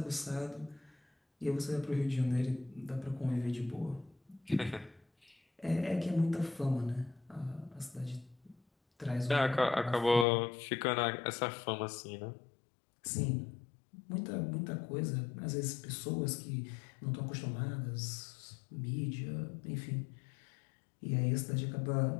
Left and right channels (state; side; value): drops out; right; at 10.2 s